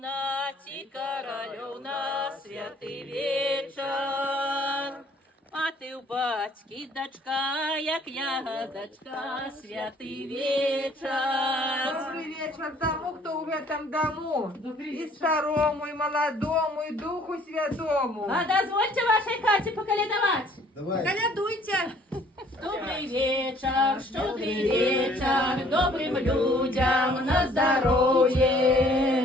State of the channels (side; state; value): both; normal; correlation 0.58